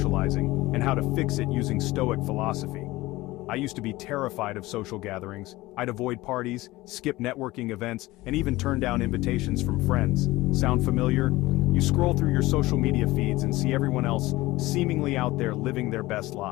and how to fix it using Stoic philosophy. I used to be terrified of social gatherings. I'd avoid parties, skip networking events, and even turn down invitations from friends. Sound familiar? You scroll through your social media feeds and see everyone else seemingly out there living their best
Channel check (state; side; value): quieter; right; 19.0 dB